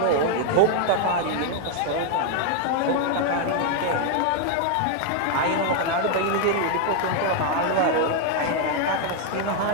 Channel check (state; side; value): different; both; correlation 0.00